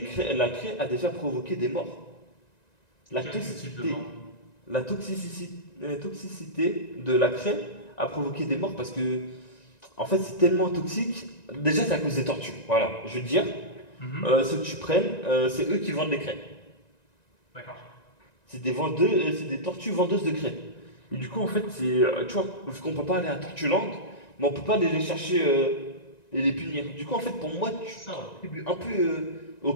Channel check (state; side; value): late; right; 1.9 ms